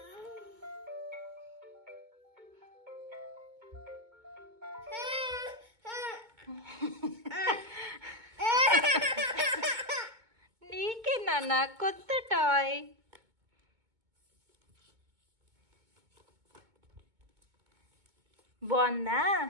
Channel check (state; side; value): late; left; 2.2 ms